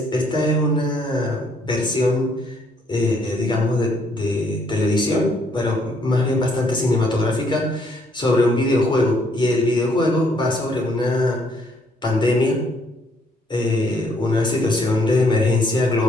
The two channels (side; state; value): both; normal; correlation 0.68